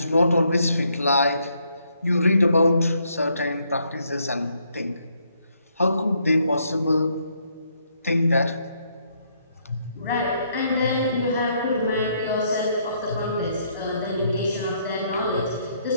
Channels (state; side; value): inverted; both; correlation -0.72